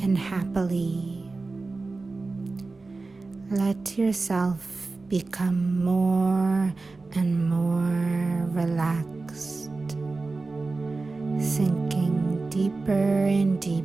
and happily. Let yourself become more and more relaxed, sinking deeper and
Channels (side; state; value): left; quieter; 3.6 dB